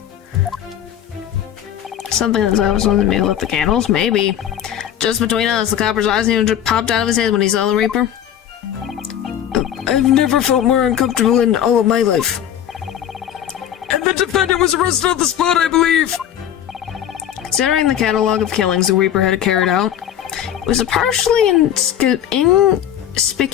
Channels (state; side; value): quieter; right; 10.4 dB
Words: Something that I was on the middle of the candles? Maybe. Just between us, the copper's eyes nearly popped out of his head when he saw the Reaper. I've never felt more uncomfortable in all of my life. And the defendant was arrested on the spot, I believe. Considering the catalog of killings the Reaper had carried out, it was a partially